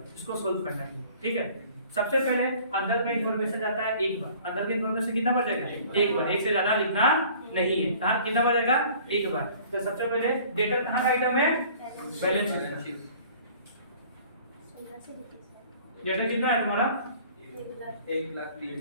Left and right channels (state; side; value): inverted; both; correlation -0.50